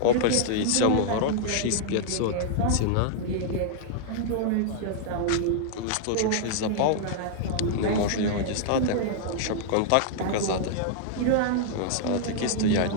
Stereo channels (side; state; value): both; different; correlation -0.01